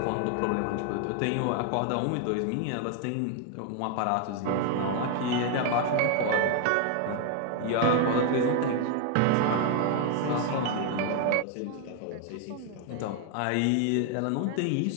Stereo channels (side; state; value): both; different; correlation 0.00